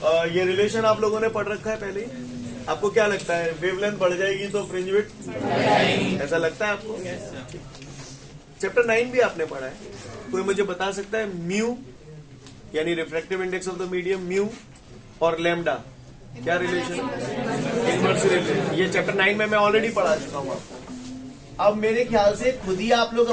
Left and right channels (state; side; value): identical; both; correlation 1.00